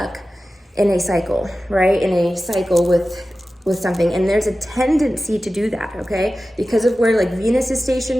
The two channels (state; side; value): normal; both; correlation 0.95